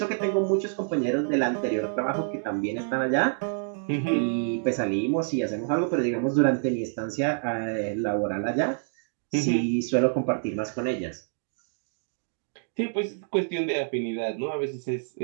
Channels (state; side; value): silent; left; digital silence